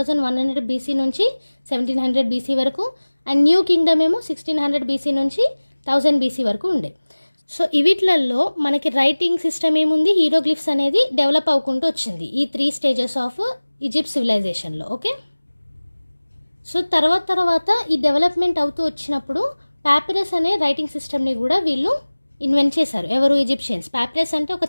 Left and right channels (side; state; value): both; inverted; correlation -1.00